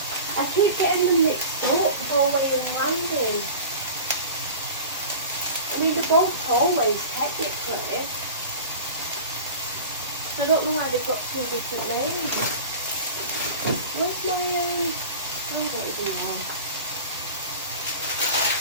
I keep getting them mixed up, hallway and landing. I mean, they're both hallways technically. So I don't know why they've got two different names. Where's my, I don't even know.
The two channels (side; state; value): both; inverted; correlation -0.36